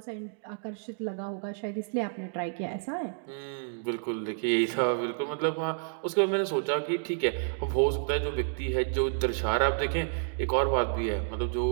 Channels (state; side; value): silent; left; digital silence